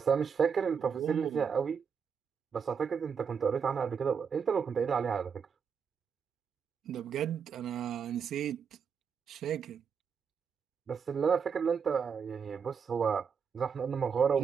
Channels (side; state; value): left; quieter; 6.6 dB